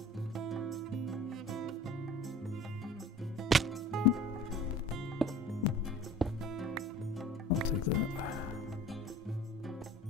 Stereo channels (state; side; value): normal; both; correlation 0.43